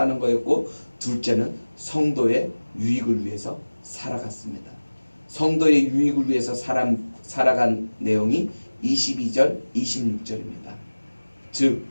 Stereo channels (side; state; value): both; inverted; correlation -1.00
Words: 거였고 둘째는 성도의 유익을 위해서 살아갔습니다. 성도의 유익을 위해서 살아간 내용이 22절, 26절입니다. 즉